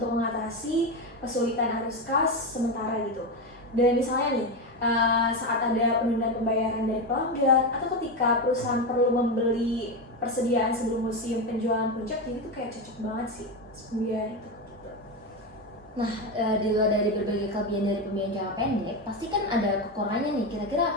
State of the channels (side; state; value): both; normal; correlation 0.14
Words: mengatasi kesulitan arus kas sementara gitu. Dan misalnya nih, saat ada penundaan pembayaran dari pelanggan atau ketika perusahaan perlu membeli persediaan sebelum musim penjualan puncak, jadi itu kayak cocok banget sih pembiayaan itu. Nah, di luar dari berbagai kelebihan dari pembiayaan jangka pendek, pasti kan ada kekurangannya nih. Kira-kira